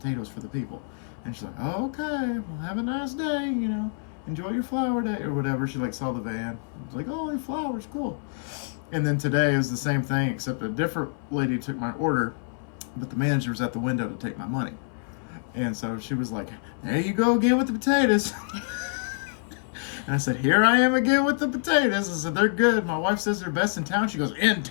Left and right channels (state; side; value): silent; right; 58 dB below the other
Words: for the people. And she's like, oh, okay, well, have a nice day, enjoy your flower day, or whatever. She saw the van. I was like, oh, your flowers, cool. And then today it was the same thing, except a different lady took my order, but the manager was at the window to take my money. And so she was like, there you go again with the potatoes. And I said, here I am again with the potatoes. I said, they're good. My wife says they're best in town. She goes, in